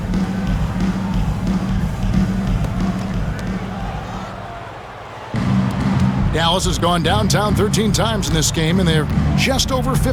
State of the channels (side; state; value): both; identical; correlation 1.00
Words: Dallas has gone downtown 13 times in this game, and they're just over